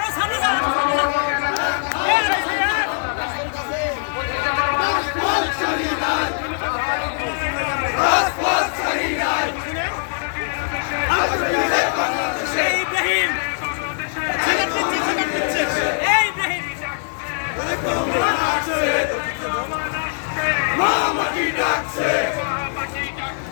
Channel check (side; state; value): right; silent; 65 dB below the other